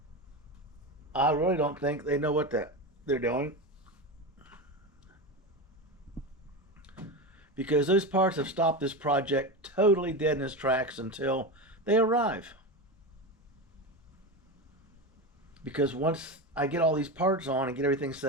I really don't think they know what they're doing, because those parts have stopped this project totally dead in its tracks until they arrive. Because once I get all these parts on and get everything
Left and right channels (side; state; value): both; normal; correlation 0.20